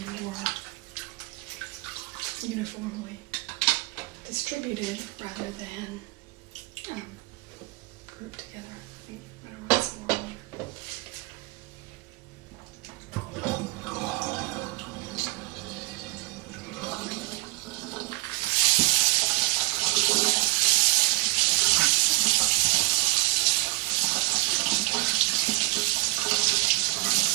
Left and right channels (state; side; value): quieter; left; 22.8 dB